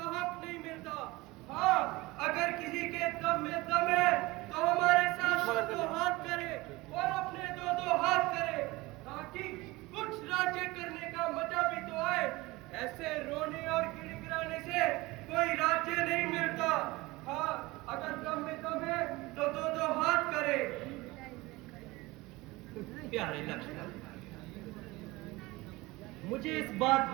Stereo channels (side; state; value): left; quieter; 21.3 dB